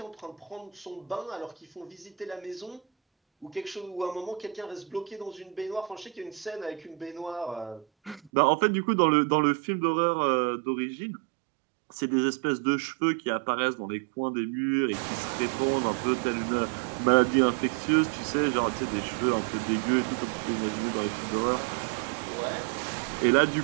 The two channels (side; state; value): left; drops out; at 8.3 s